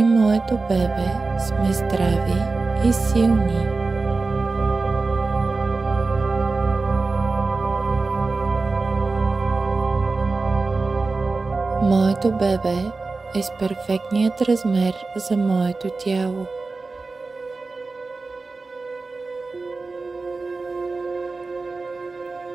моето бебе сме здрави и силни. Моето бебе е с перфектният размер за моето тяло.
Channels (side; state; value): left; quieter; 3.8 dB